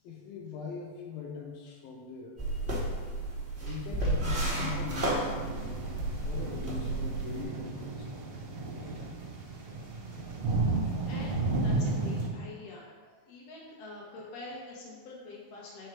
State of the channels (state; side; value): late; right; 8.0 ms